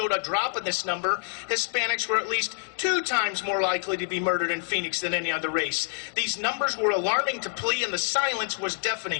a drop in this number. Hispanics were at least 2 times more likely to be murdered in Phoenix than any other race. These numbers were alarming to PLEA, and the silence was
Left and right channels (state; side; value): silent; right; digital silence